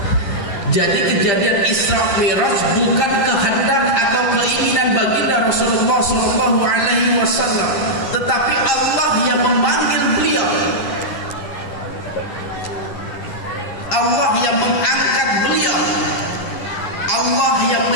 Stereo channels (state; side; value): late; right; 10 ms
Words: Jadi kejadian Isra Mi'raj bukan kehendak atau keinginan baginda Rasulullah sallallahu alaihi wasallam, tetapi Allah yang memanggil beliau. Allah yang mengangkat beliau. Allah yang